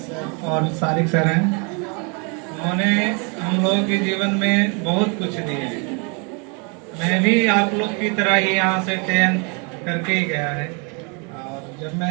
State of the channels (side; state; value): left; quieter; 34.3 dB